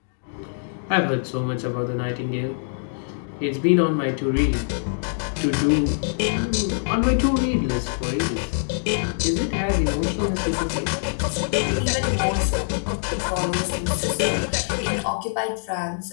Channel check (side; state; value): right; silent; digital silence